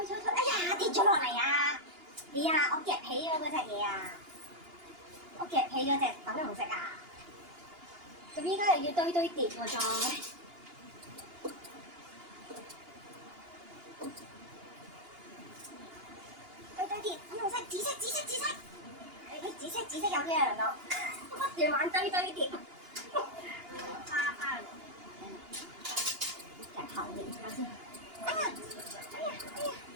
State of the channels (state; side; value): late; left; 2.8 ms